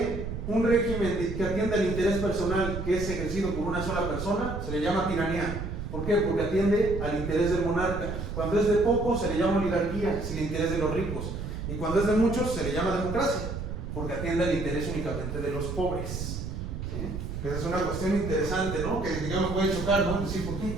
un régimen que atiende al interés personal que es ejercido por una sola persona, se le llama tiranía. ¿Por qué? Porque atiende al interés del monarca. Cuando es de pocos, se le llama oligarquía, es el interés de los ricos. Y cuando es de muchos, se le llama democracia, porque atiende al interés únicamente de los pobres. ¿Sí? Esa es una cuestión interesante, ¿no? Que digamos puede chocar, ¿no? Decir, ¿por qué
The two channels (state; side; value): noise; right; rumble, 6 dB below the sound